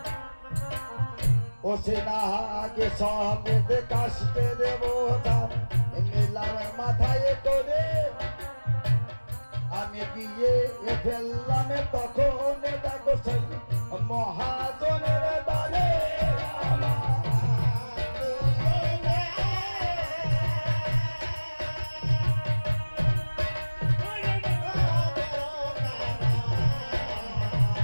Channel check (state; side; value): inverted; both; correlation -1.00